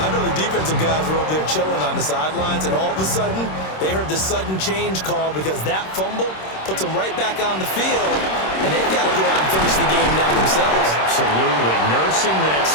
know the defensive guys were over there chilling on the sidelines, and all of a sudden, they heard the sudden change call because that fumble puts them right back on the field, and they've got to go out and finish the game now themselves. Absolutely. Nursing that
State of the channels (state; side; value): late; right; 26 ms